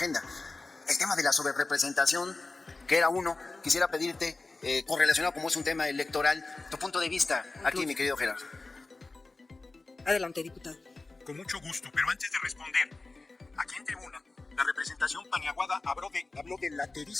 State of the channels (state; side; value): quieter; right; 3.5 dB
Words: El tema de la sobrerepresentación, que era uno, quisiera pedirte, correlacionado como es un tema electoral, tu punto de vista aquí, mi querido Gerardo. Adelante, diputado. Con mucho gusto, pero antes de responder, aquí en tribuna, la representación paniaguada habló de